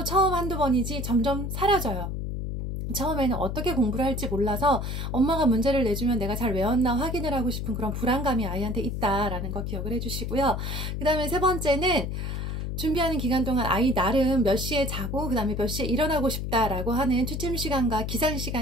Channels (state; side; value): noise; left; hum, 3 dB below the sound